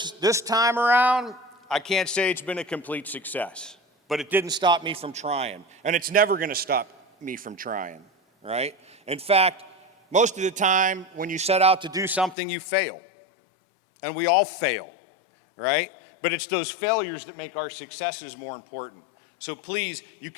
time around, I can't say it's been a complete success, but it didn't stop me from trying, and it's never going to stop me from trying, right? In fact, most of the time when you set out to do something, you fail. And we all fail, right? But it's those failures that make our successes more important. So please, you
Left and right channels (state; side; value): drops out; right; at 12.4 s